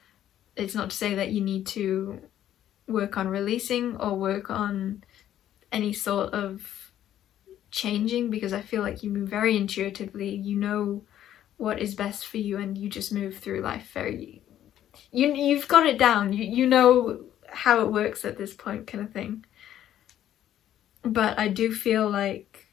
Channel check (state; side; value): quieter; right; 11.5 dB